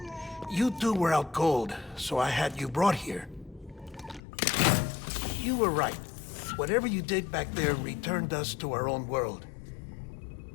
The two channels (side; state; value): right; drops out; at 4.2 s